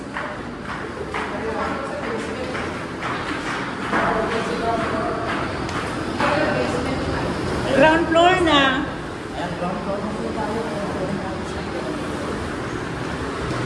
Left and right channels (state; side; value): identical; both; correlation 1.00